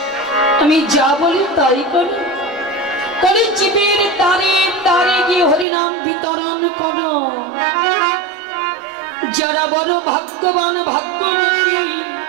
আমি যা বলি তাই করি। কলিযুগের দ্বারে দ্বারে গিয়ে হরিনাম বিতরণ করো। যারা বড় ভাগ্যবান ভাগ্যবতী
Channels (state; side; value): drops out; left; at 5.7 s